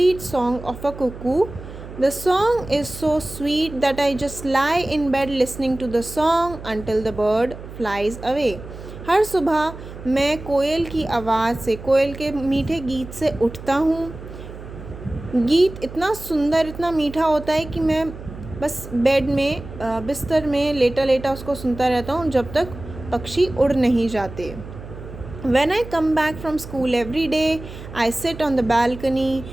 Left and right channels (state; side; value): noise; right; hum, 13 dB below the sound